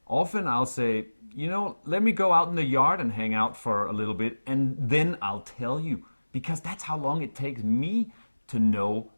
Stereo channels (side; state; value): both; inverted; correlation -1.00